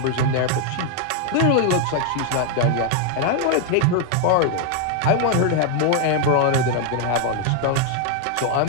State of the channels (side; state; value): both; different; correlation 0.01